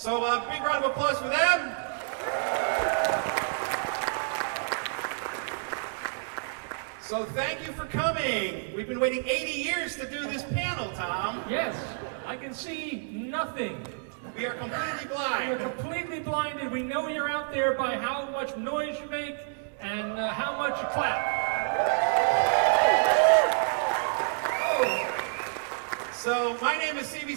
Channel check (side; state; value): left; silent; digital silence